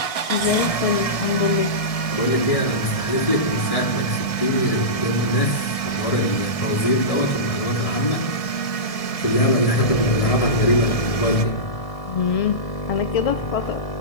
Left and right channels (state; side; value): late; right; 1.7 ms